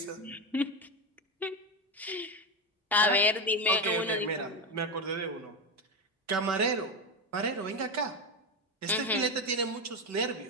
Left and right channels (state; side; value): normal; both; correlation 0.14